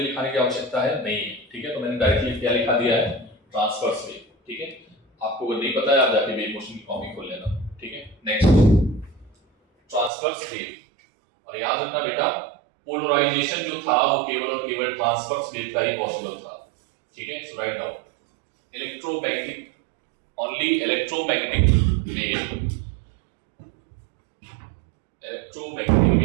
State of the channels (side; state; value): left; drops out; at 10.1 s